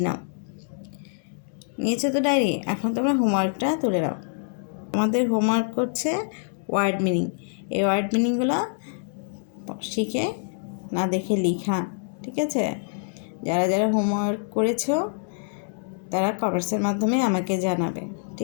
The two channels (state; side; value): silent; right; 61 dB below the other